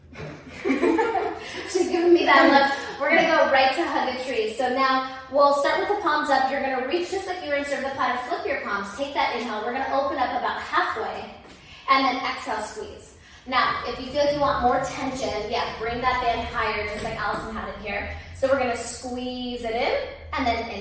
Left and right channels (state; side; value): identical; both; correlation 1.00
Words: She's giving me that look. We're going to go right to hug a tree. So now we'll start with the palms up. You're going to reach just like you were in Survipata. Flip your palms. Take that inhale. We're going to open up about halfway. And then exhale, squeeze. Now, if you feel like you want more tension, yeah, bring that band higher just like Allison had it here. So we're going to squeeze it in and then